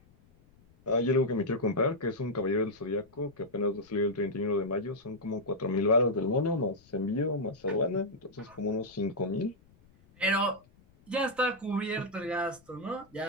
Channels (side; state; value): left; noise; rumble, 29 dB below the sound